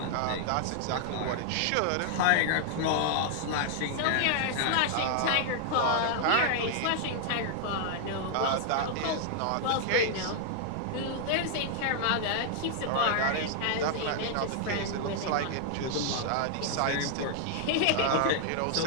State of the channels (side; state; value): both; different; correlation 0.00